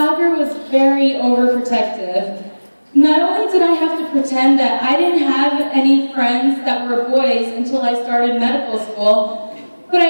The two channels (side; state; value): both; inverted; correlation -1.00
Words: was very overprotective. Not only did I have to pretend that I didn't have any friends that were boys until I started medical school, but